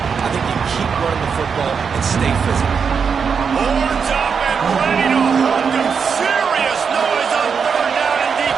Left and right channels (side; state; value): left; quieter; 6.2 dB